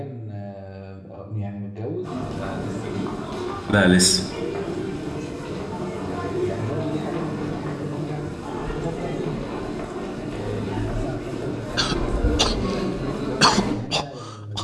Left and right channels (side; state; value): both; identical; correlation 1.00